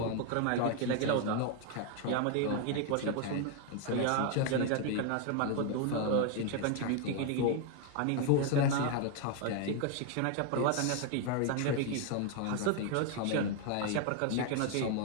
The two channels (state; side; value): different; both; correlation 0.00